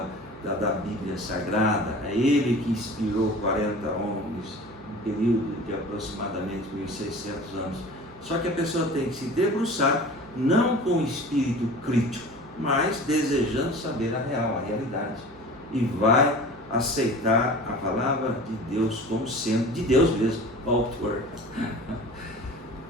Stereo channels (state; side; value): noise; right; hum, 24 dB below the sound